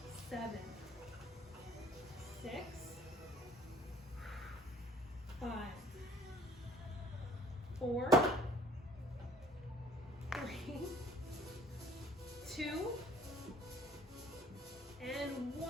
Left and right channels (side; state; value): both; normal; correlation 0.54